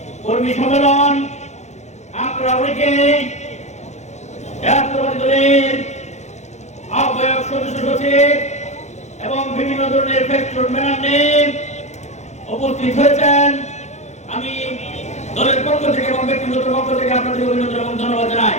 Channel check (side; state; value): right; late; 0.33 ms